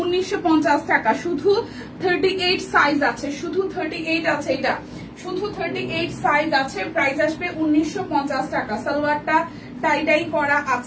1950 টাকা। শুধু 38 সাইজ আছে, শুধু 38 আছে। এটা শুধু 38 সাইজ আছে। প্রাইস আসবে 1950 টাকা। সালোয়ারটা টাই ডাই করা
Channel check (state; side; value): identical; both; correlation 1.00